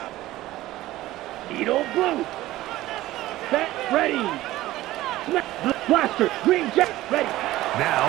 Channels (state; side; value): quieter; left; 16.2 dB